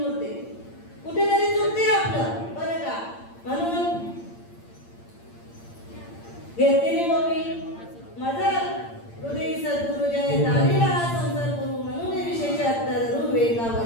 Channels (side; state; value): right; late; 8.7 ms